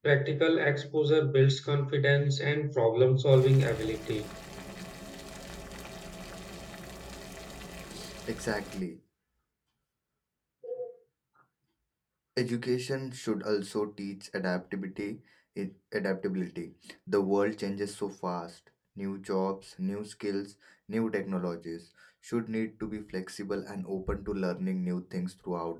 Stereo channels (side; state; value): both; identical; correlation 1.00